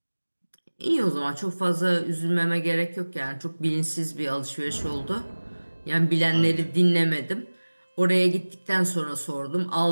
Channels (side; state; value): both; inverted; correlation -1.00